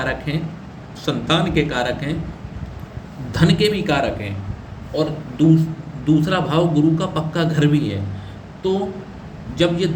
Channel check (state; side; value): identical; both; correlation 1.00